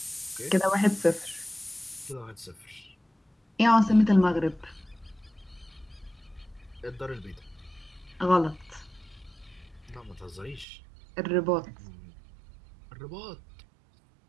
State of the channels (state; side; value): drops out; left; at 10.7 s